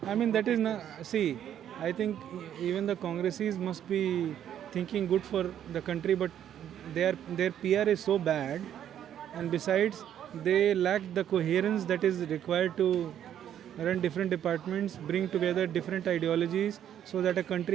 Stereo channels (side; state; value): left; quieter; 10.2 dB